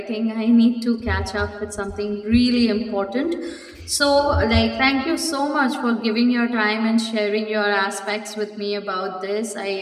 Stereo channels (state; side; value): identical; both; correlation 1.00